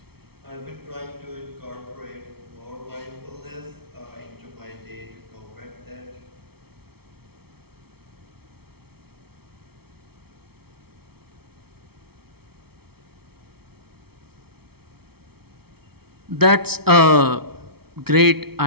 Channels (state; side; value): late; left; 0.95 ms